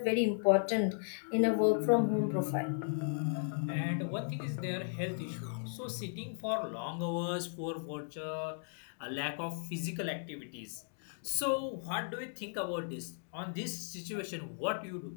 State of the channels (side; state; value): right; silent; digital silence